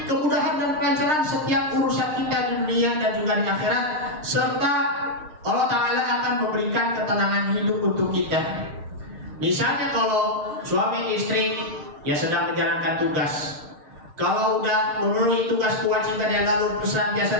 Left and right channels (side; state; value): left; late; 6.5 ms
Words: kemudahan dan kelancaran setiap urusan kita di dunia dan juga di akhirat, serta Allah Ta'ala akan memberikan ketenangan hidup untuk kita. Misalnya kalau suami istri yang sedang menjalankan tugas, kalau udah memenuhi tugas kewajiban yang lalu